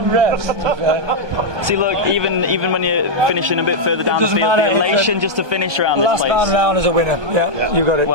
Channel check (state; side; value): late; left; 1.2 ms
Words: rest. See, look, even when you're finishing a bit further down the field, the elation just to finish around this place. Last man round is a winner. Yeah, you got it.